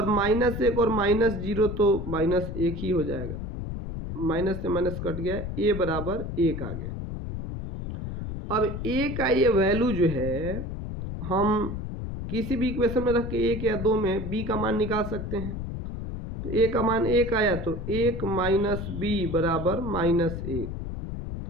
-1 और -0 तो -1 ही हो जाएगा, माइनस से माइनस कट गया, a बराबर 1 आ गया। अब a का ये वैल्यू जो है हम किसी भी इक्वेशन में रख के 1 या 2 में b का मान निकाल सकते हैं। तो a का मान 1 आया तो 1 माइनस b बराबर -1।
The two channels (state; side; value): noise; left; rumble, 6 dB below the sound